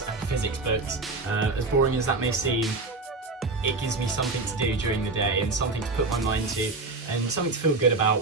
and physics books. As boring as that may seem, it gives me something to do during the day and something to put my mind to and something to feel good about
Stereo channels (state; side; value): quieter; left; 3.5 dB